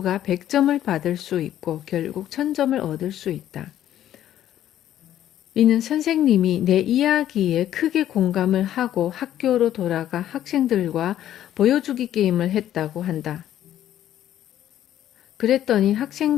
100점을 받을 수 있고 결국 1000점을 얻을 수 있다. 이는 선생님이 내 이야기에 크게 공감을 하고 학교로 돌아가 학생들과 보여주기 게임을 했다고 한다. 그랬더니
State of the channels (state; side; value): quieter; right; 11.8 dB